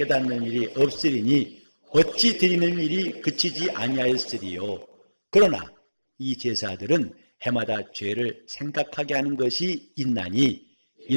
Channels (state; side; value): inverted; both; correlation -1.00